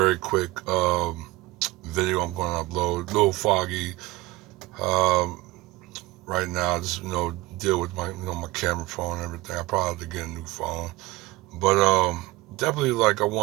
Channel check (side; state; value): left; quieter; 19.9 dB